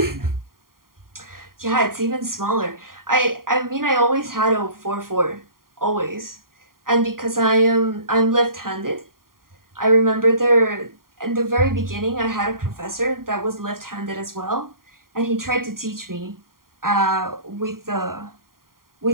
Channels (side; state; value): left; late; 0.91 ms